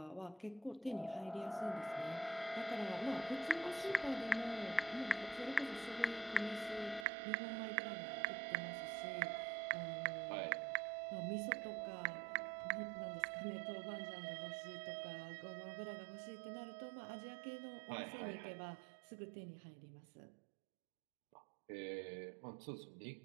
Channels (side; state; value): left; drops out; at 7.1 s